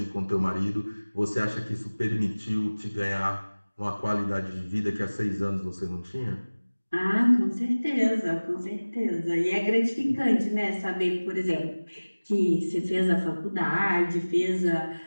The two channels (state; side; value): inverted; both; correlation -1.00